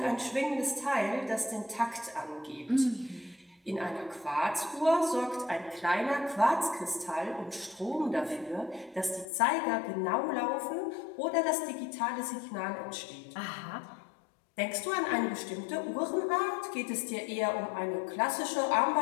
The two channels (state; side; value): drops out; right; at 9.2 s